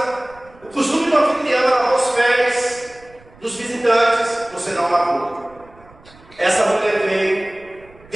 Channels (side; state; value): right; noise; rumble, 25 dB below the sound